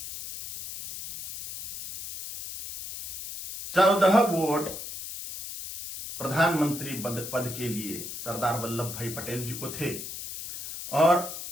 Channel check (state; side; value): noise; left; hiss, 9 dB below the sound